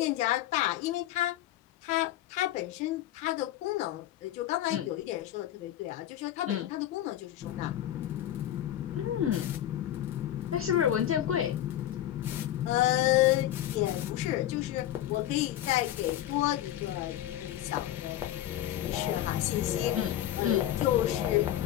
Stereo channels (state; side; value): quieter; right; 12.8 dB